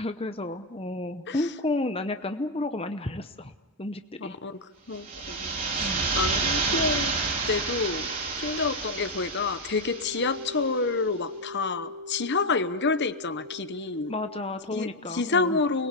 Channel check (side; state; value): both; normal; correlation 0.05